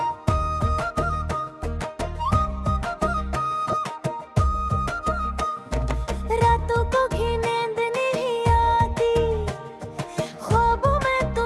रातों को भी नींद नहीं आती, ख्वाबों में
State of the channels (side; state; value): both; identical; correlation 1.00